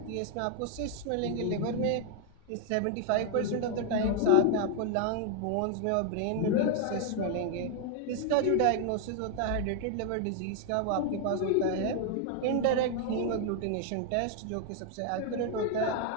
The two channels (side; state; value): both; different; correlation 0.00